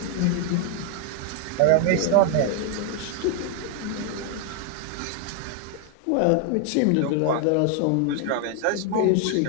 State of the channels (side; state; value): both; different; correlation 0.00